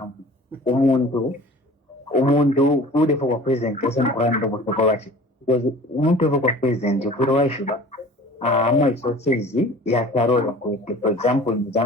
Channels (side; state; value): both; normal; correlation 0.44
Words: umuntu ude for president person kuranda botokwachi because umuntu for president ufuro waishuba ama resources ya karora kwete. For example in